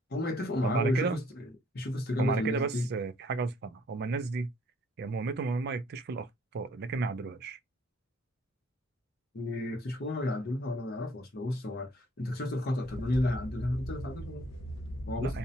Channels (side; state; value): both; normal; correlation 0.62